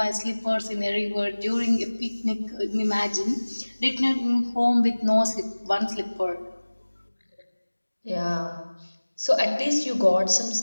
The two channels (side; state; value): both; inverted; correlation -1.00